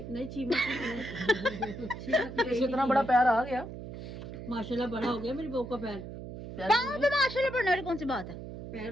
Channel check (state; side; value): noise; right; hum, 10 dB below the sound